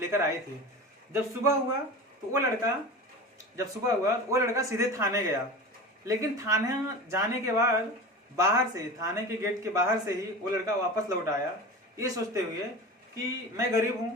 आई थी। जब सुबह हुआ तो वो लड़का सीधे थाने गया। लेकिन थाने जाने के बाद थाने के गेट के बाहर से ही वो लड़का वापस लौट आया, ये सोचते हुए कि मैं गरीब हूँ,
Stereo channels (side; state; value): both; normal; correlation 0.31